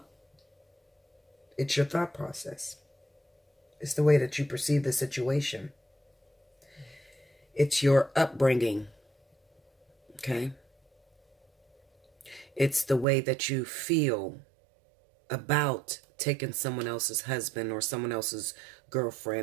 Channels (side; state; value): left; drops out; at 13.1 s